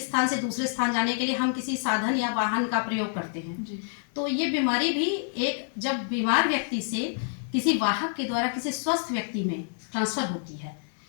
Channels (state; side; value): silent; right; 60 dB below the other